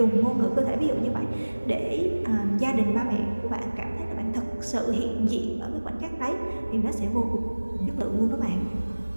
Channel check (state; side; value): inverted; both; correlation -1.00